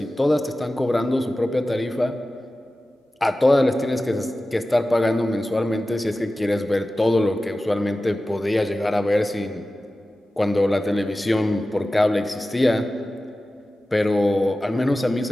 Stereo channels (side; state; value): both; normal; correlation 0.95